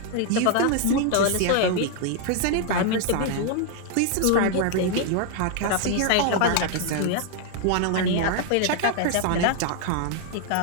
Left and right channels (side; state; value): both; different; correlation 0.00